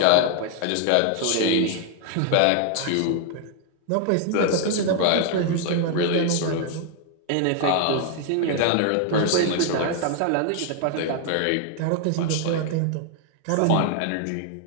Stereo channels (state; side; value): different; both; correlation 0.00